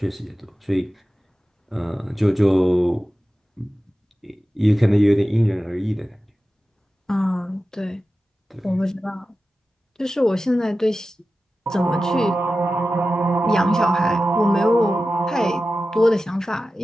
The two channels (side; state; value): both; normal; correlation 0.94